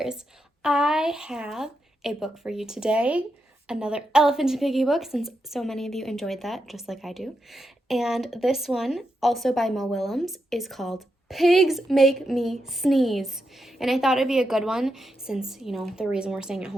I have a book for you today, another Elephant and Piggie book, since so many of you enjoyed that, just like I do. And this one, also by Mo Willems, is called Pigs Make Me Sneeze. And I thought it'd be a good one since, the reason we're staying at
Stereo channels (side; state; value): both; normal; correlation 0.85